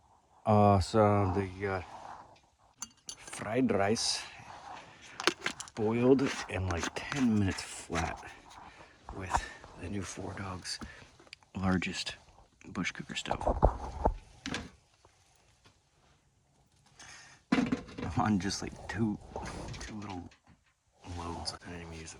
Awesome. They got fried rice, boiled in like 10 minutes flat with the new 4Dogs largest bush cooker stove. On just like two little loads. I didn't even use the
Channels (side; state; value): both; identical; correlation 1.00